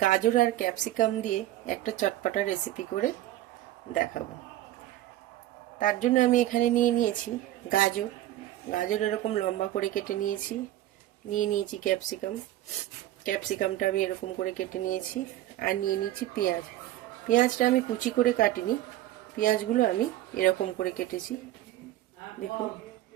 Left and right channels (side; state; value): left; quieter; 14.3 dB